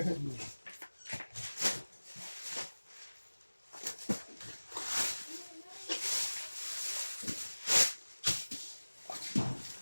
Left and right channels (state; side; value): inverted; both; correlation -1.00